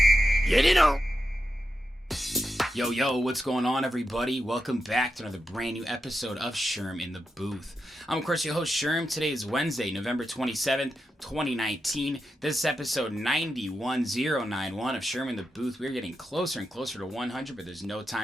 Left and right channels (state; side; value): normal; both; correlation 0.88